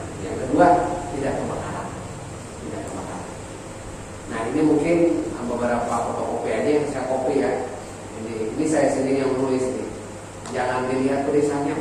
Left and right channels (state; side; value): identical; both; correlation 1.00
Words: yang kedua tidak kebakaran. Nah, ini mungkin beberapa fotokopi aja yang saya copy ya. Ini saya sendiri yang nulis ini. Jangan dilihat tulisannya